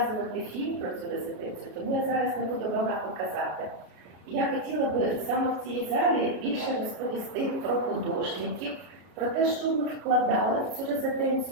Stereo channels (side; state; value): left; late; 32 ms